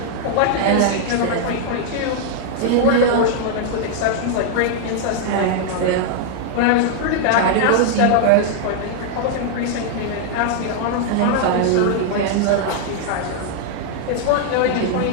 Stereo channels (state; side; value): different; both; correlation 0.00